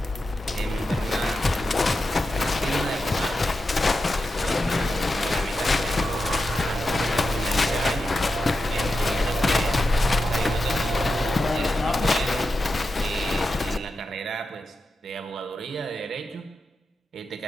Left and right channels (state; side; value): normal; both; correlation 0.89